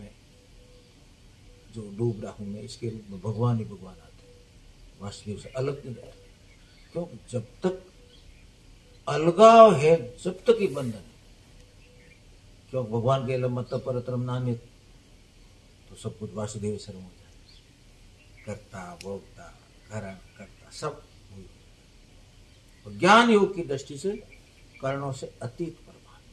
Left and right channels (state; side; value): identical; both; correlation 1.00